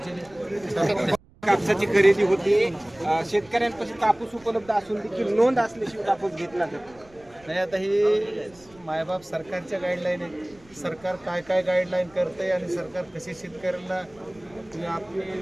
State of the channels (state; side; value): noise; right; rumble, 27 dB below the sound